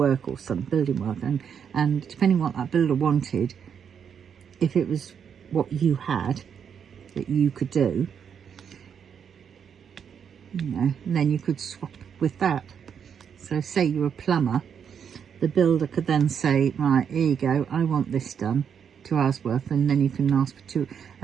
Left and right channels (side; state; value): left; quieter; 7.6 dB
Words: or some building work, and depending on what that builder wanted, if it was what you had that you could do, you know, then you could swap with that. So say you're a plumber, the builder could then say, right, here you go, I want this done, 2 hours worth, and then you can ask for two,